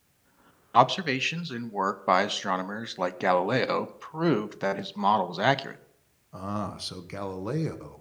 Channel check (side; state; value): both; identical; correlation 1.00